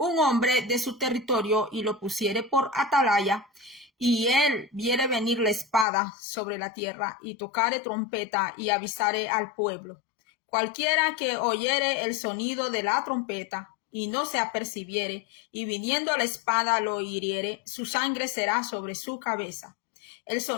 hombre de su territorio y lo pusiere por atalaya, y él viere venir la espada sobre la tierra, y tocare trompeta y avisare al pueblo, cualquiera que oyere el sonido de la trompeta y no se apercibiere, y viniendo la espada lo hiriere, su sangre será sobre su cabeza. El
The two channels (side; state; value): right; drops out; at 5.9 s